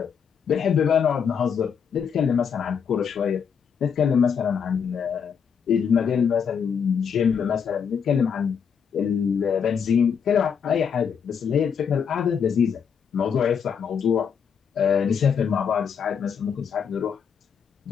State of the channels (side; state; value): right; quieter; 7.0 dB